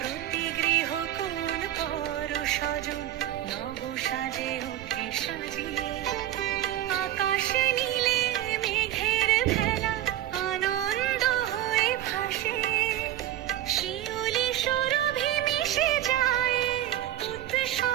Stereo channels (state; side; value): quieter; left; 13.0 dB